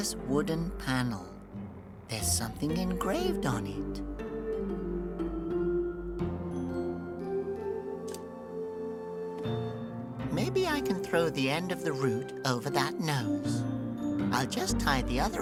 wooden panel. There's something engraved on it. Maybe I can throw the end of the root over that nose. I'll just tie the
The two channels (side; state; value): both; identical; correlation 1.00